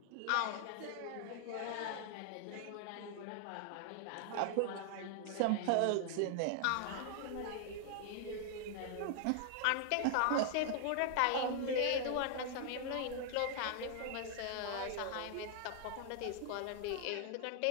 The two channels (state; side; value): different; both; correlation 0.00